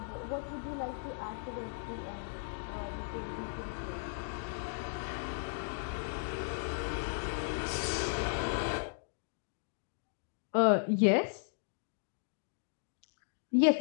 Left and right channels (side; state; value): right; silent; digital silence